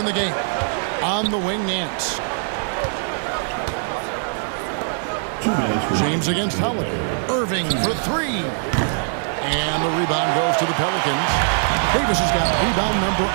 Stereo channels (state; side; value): silent; left; digital silence